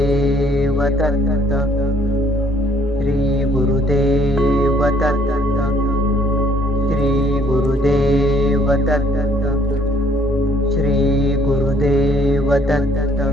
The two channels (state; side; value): normal; both; correlation 0.63